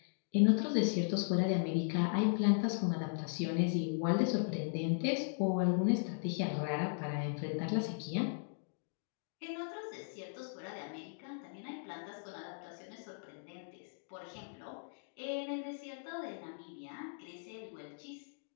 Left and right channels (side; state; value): right; silent; digital silence